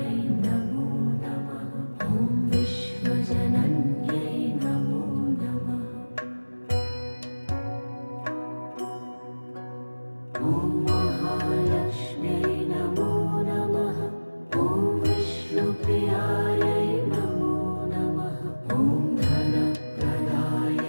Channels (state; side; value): inverted; both; correlation -1.00